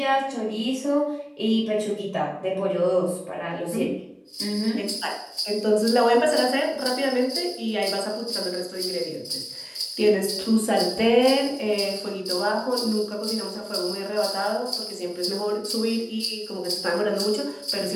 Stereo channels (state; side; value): identical; both; correlation 1.00